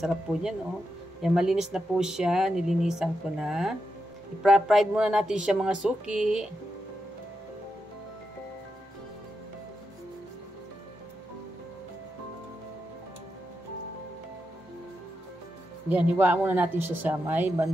po yan, oh. Yan, malinis na po siya. Nilinisan ko na. I-fried muna natin siya mga suki. Yan, hiwaan muna natin siya sa may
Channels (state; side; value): normal; both; correlation 0.86